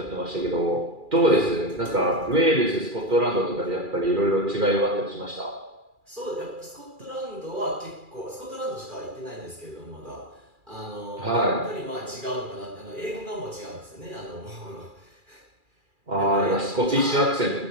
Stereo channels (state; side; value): late; left; 2.4 ms